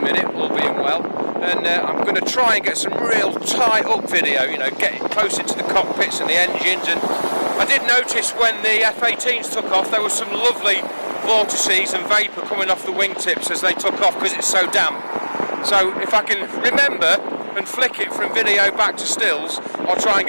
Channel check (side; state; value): both; inverted; correlation -1.00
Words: all being well. And I'm going to try and get some real tight up video, you know, getting close into the cockpits and the engines. And I did notice when the F-18s took off, there was some lovely vortices and vapour coming off the wingtips as they took off because it's so damp. So if I can remember and flick it from video back to stills, I'll try and